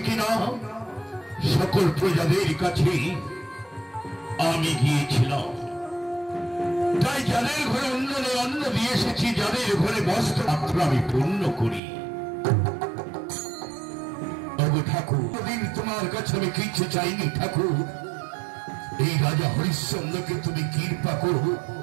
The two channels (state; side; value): drops out; left; at 11.8 s